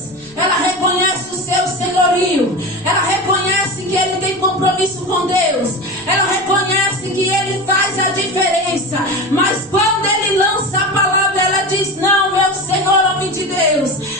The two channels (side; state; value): both; normal; correlation 0.25